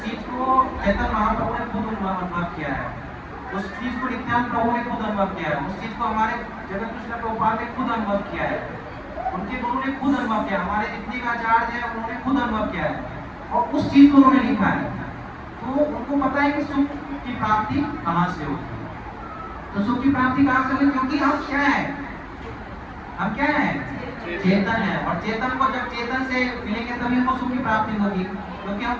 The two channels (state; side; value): identical; both; correlation 1.00